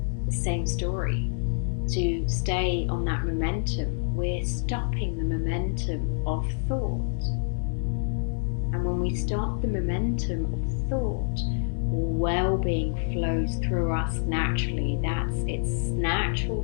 the same story, to stay on that momentum. We're stopping the momentum of thought. And when we stop the momentum of thought, well-being flows through us naturally. That's its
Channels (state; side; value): silent; right; digital silence